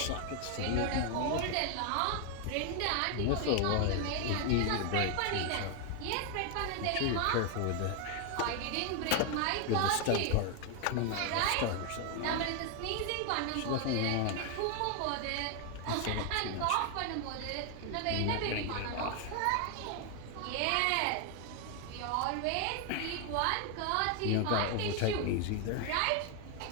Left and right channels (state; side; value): different; both; correlation 0.00